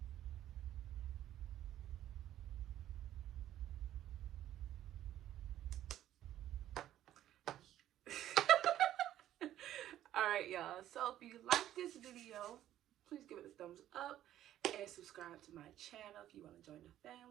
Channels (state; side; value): quieter; left; 12.4 dB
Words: Alright, y'all. So if you like this video, please give it a thumbs up and subscribe to my channel if you want to join the